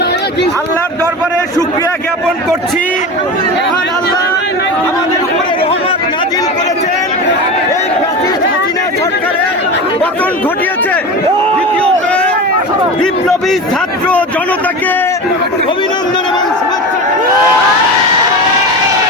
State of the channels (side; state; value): both; normal; correlation 0.27